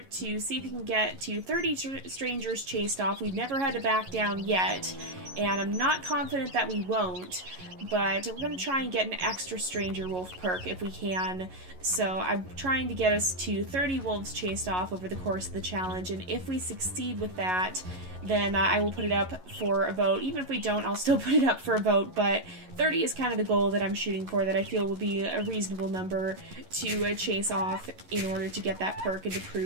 to see if we can get to 30 strangers chased off. We've never had to back down yet, and I'm not confident that we won't. But we're going to try and get an extra stranger wolf perk if we can. So I'm trying to get us to 30 wolves chased off over the course of the challenge, and if we succeed with that, then I will put it up for a vote. Even if we don't, I'll still put it up for a vote, but 30 is kind of the goal that I'm shooting for, that I feel will be a reasonable number to chase off in order to get that perk and to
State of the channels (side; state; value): left; late; 11 ms